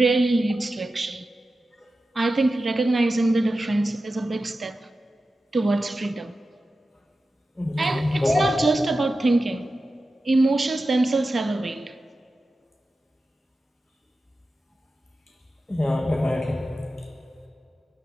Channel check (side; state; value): both; normal; correlation 0.93